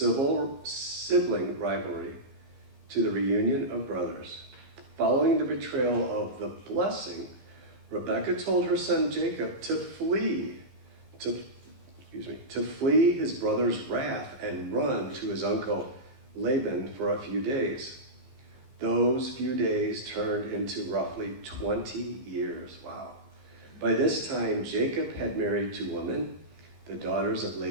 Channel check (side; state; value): left; late; 15 ms